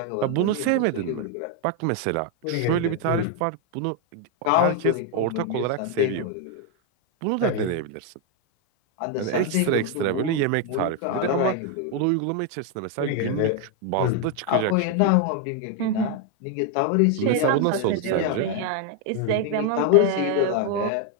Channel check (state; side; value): different; both; correlation 0.01